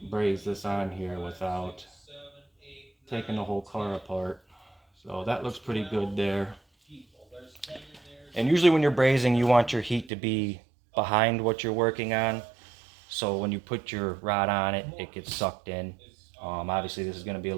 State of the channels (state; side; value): drops out; left; at 10.1 s